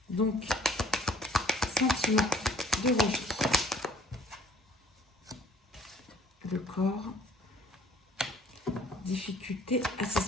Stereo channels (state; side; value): normal; both; correlation 0.56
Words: Donc, sentiment de rejet. Le corps, difficulté à